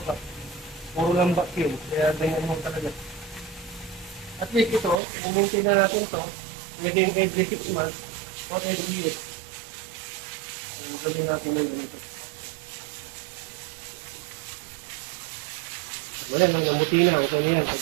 pa. Puro lang vacuum. Kaya ganyan mo talaga. At least ito, i-maintain na natin ito within every 6 months or every year. Gawin natin yung ganito. Wala nang namuti na, okay na yan, sa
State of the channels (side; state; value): left; drops out; at 5.0 s